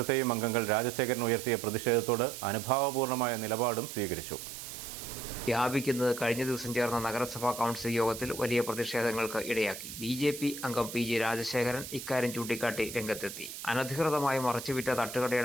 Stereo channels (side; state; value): right; noise; hiss, 10 dB below the sound